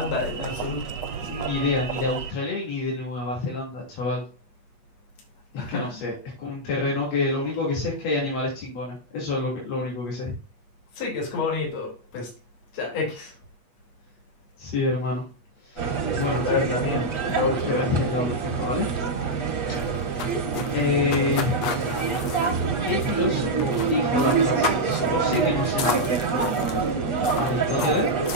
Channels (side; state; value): right; late; 8.3 ms